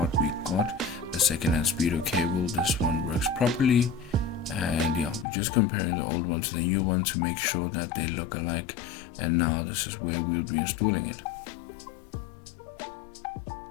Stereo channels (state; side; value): drops out; right; at 5.2 s